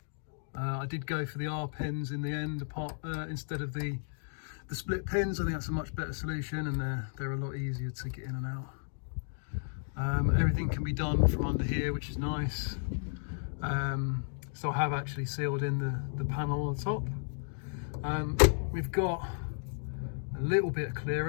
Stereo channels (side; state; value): right; silent; digital silence